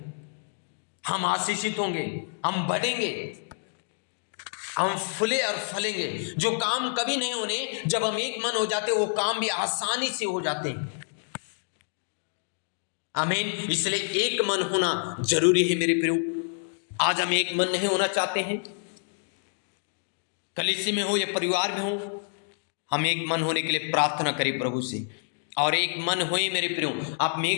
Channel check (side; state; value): right; silent; digital silence